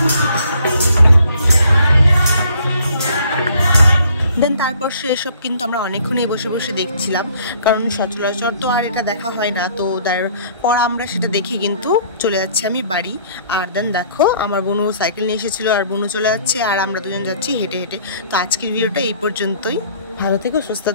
দেন তারপর সেসব কিন্তু আমরা অনেকক্ষণই বসে বসে দেখছিলাম, কারণ সচরাচর তো আর এটা দেখা হয় না। তো তারপর আমরা সেটা দেখে কিন্তু চলে যাচ্ছি আমি বাড়ি। আর দেন দেখো আমার বোনও সাইকেল নিয়ে এসেছিলো আর বোনও চলে যাচ্ছে আর আমরা দুজন যাচ্ছি হেঁটে হেঁটে। তো আজকের ভিডিওটা এই পর্যন্তই। ভালো থেকো, সুস্থ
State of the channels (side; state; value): both; inverted; correlation -0.59